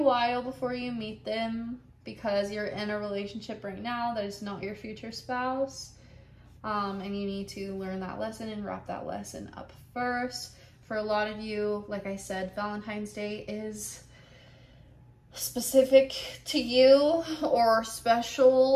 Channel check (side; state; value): both; identical; correlation 1.00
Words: before you meet them because you're in a relationship right now that is not your future spouse. And you need to learn that lesson and wrap that lesson up first. For a lot of you, like I said, Valentine's Day is specific to you or